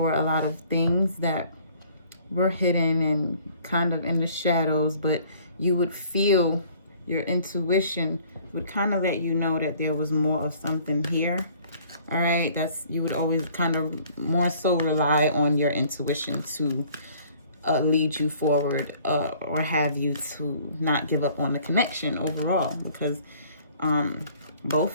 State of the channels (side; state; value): both; inverted; correlation -0.56